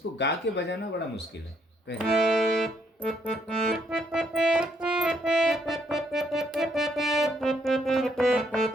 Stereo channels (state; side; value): normal; both; correlation 0.71